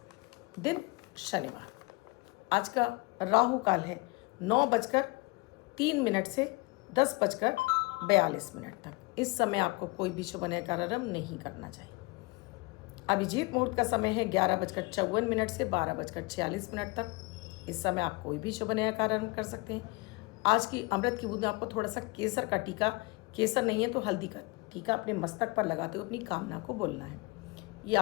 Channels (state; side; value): quieter; right; 25.2 dB